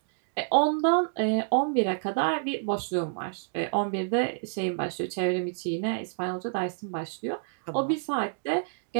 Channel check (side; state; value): left; silent; digital silence